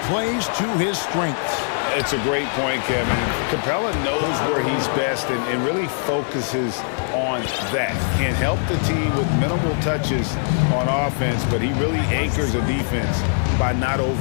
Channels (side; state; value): right; silent; 64 dB below the other